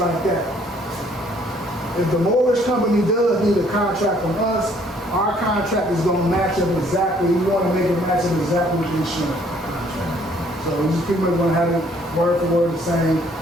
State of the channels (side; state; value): both; normal; correlation 0.62